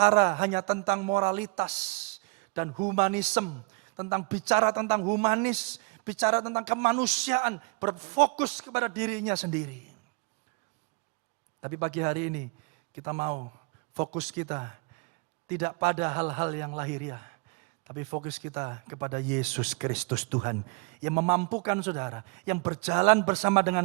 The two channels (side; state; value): left; quieter; 31.1 dB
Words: hanya tentang moralitas dan humanisme. Bicara tentang humanis, bicara tentang kemanusiaan, berfokus kepada dirinya sendiri. Tapi pagi hari ini kita mau fokus kita tidak pada hal-hal yang lahiriah. Tapi fokus kita kepada Yesus Kristus Tuhan. Yang memampukan saudara, yang berjalan bersama